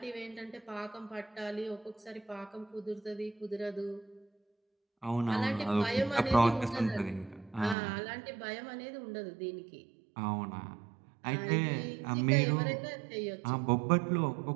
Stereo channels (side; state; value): left; drops out; at 7.8 s